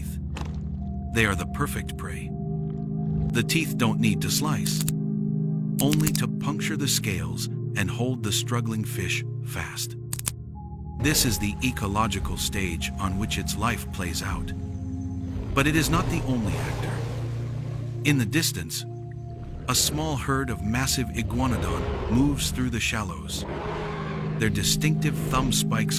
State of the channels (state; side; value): identical; both; correlation 1.00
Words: they are the perfect prey. The teeth don't need to slice, only to puncture the scales and hold the struggling fish fast. This is the ecological stage on which its life plays out. But it is not the only actor. In the distance, a small herd of massive iguanodon moves through the shallows, their distinctive thumb spikes